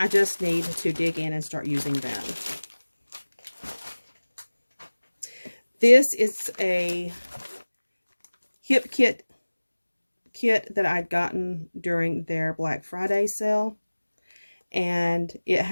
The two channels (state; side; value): inverted; both; correlation -1.00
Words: just need to dig in and start using them. This is a Hip Kit that I'd gotten during their Black Friday sale. And it